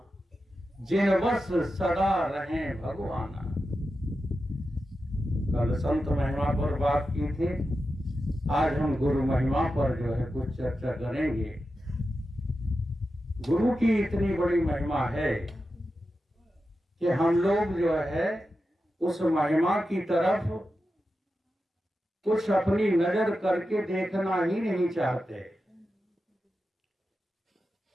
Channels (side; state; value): both; normal; correlation 0.90